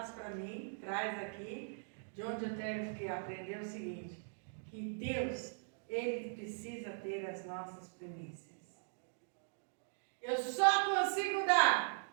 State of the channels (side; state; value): left; silent; digital silence